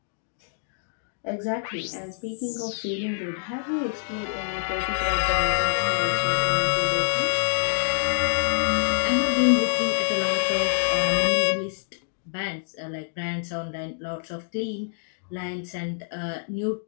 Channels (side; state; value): right; silent; digital silence